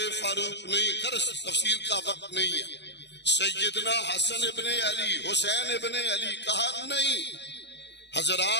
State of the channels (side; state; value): right; late; 0.50 ms